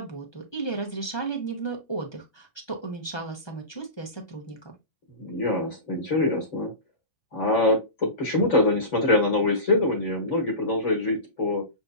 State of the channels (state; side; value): late; right; 1.2 ms